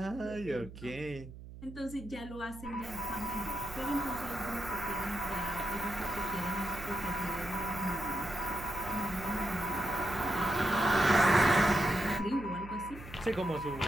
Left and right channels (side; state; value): right; noise; hum, 14 dB below the sound